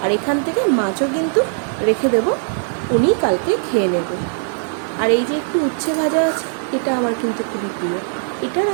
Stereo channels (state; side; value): silent; left; digital silence